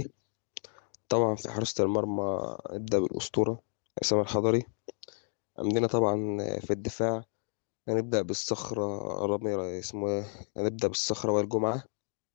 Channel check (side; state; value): right; silent; 57 dB below the other